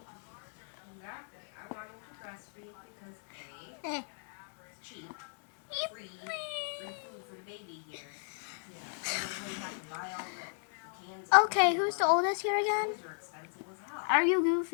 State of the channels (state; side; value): silent; right; 54 dB below the other